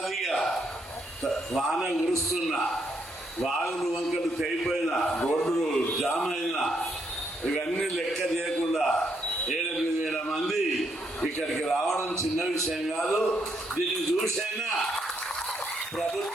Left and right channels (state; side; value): normal; both; correlation 0.76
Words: వాన కురుస్తున్న వాగులు వంకలు తెగిపోయిన రోడ్లు జామ్ అయిన ఇవన్నీ లెక్క చేయకుండా 7-8 మంది ఇక్కడికి రావడం చిన్న విషయం కాదు. దీన్ని చూసైనా